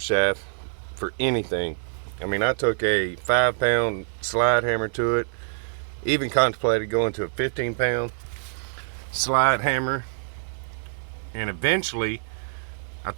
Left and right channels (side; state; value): left; silent; digital silence